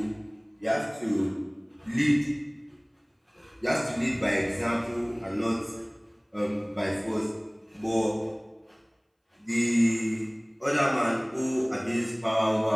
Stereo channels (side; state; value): both; identical; correlation 1.00